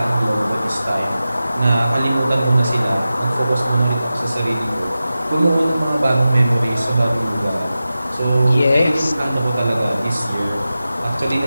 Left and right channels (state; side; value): inverted; both; correlation -0.94